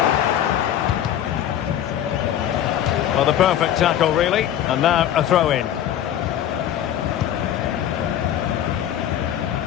Well, the perfect tackle, really. And now a throw-in.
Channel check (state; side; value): quieter; right; 10.9 dB